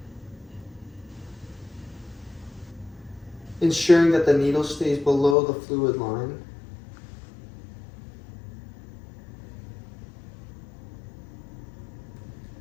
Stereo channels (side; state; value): right; drops out; at 5.4 s